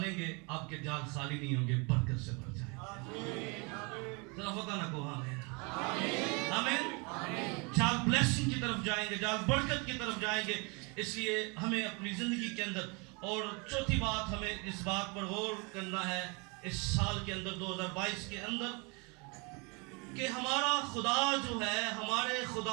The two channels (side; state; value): left; quieter; 30.8 dB